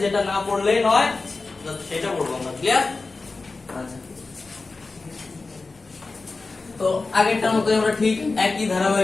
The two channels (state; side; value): quieter; right; 3.8 dB